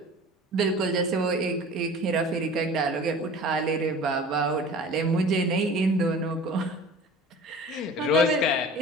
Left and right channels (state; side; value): normal; both; correlation 0.41